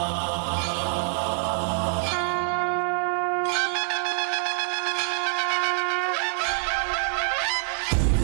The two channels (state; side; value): silent; left; digital silence